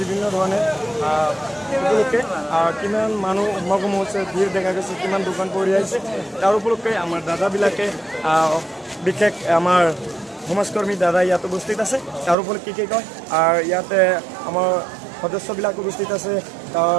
ধৰণে উপলক্ষে কিমান মানুহ সমাগম হৈছে ভিৰ দেখা গৈছে কিমান দোকান পৰি আছে তাৰ উপলক্ষে আমাৰ দাদাবিলাকে বিশেষ আমাৰ সমাজকৰ্মী দাদা ইয়াত উপস্থিত আছে তাৰ উপলক্ষে কি কয় আৰু ইয়াতে আমাৰ সদস্যবিলাক উপস্থিত আছে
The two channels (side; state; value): left; drops out; at 12.4 s